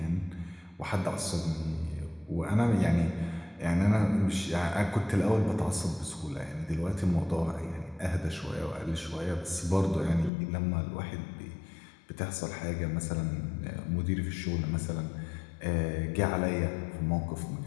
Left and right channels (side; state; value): right; drops out; at 10.3 s